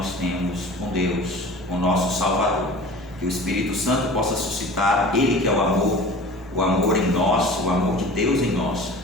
temos com Deus, com o nosso Salvador. Que o Espírito Santo possa suscitar, Ele que é o amor em nós, o amor de Deus em nós,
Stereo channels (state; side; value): normal; both; correlation 0.40